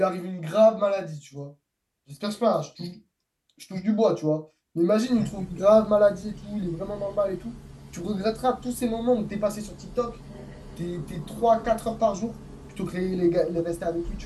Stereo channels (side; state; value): both; identical; correlation 1.00